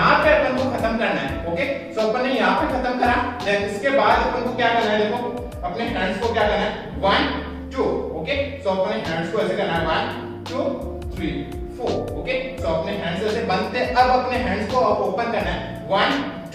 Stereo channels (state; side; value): identical; both; correlation 1.00